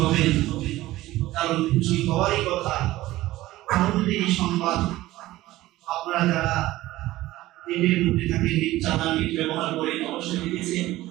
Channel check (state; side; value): quieter; left; 16.7 dB